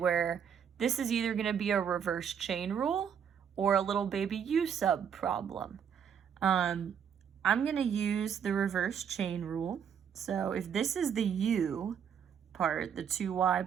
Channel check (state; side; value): quieter; left; 7.9 dB